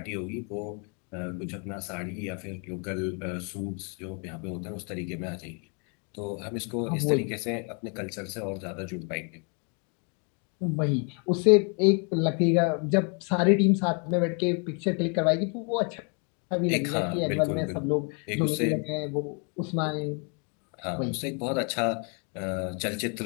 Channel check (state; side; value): quieter; right; 37.4 dB